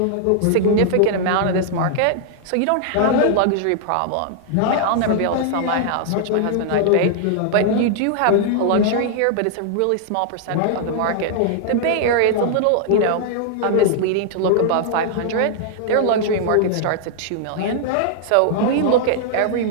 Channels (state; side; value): different; both; correlation -0.01